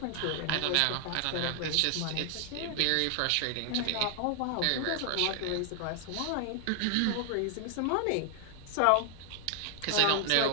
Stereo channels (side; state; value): both; different; correlation 0.00